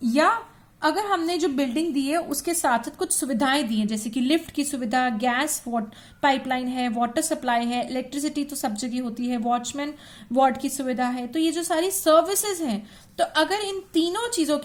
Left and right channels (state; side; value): identical; both; correlation 1.00